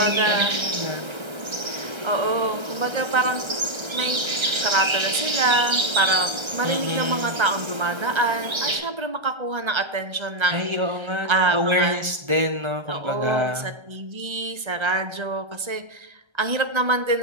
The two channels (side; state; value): left; late; 1.3 ms